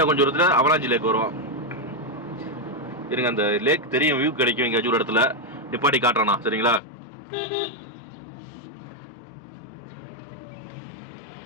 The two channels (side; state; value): right; drops out; at 6.8 s